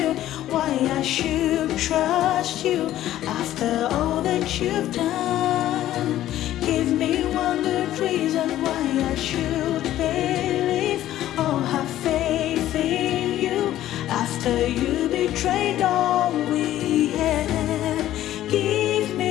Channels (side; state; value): right; quieter; 13.3 dB